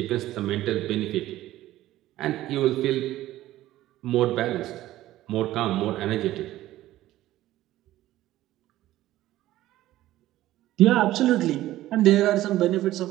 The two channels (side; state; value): left; quieter; 15.0 dB